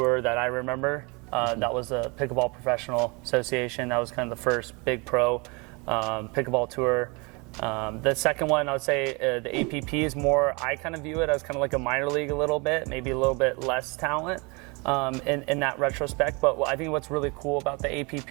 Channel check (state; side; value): quieter; left; 29.3 dB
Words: that I remember. That was the Pickleball Professional Association. That was kind of the first big pro pickleball tour. The second one, I would say the APP is more, I kind of view it as kind of like a minor league a little bit, maybe a little bit less talent in that retrospect. But I think what's really cool about the